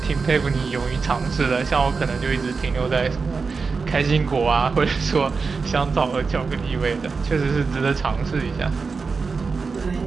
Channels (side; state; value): left; quieter; 4.7 dB